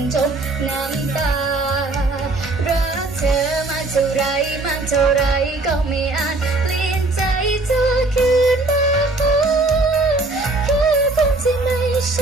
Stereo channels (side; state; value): left; quieter; 3.1 dB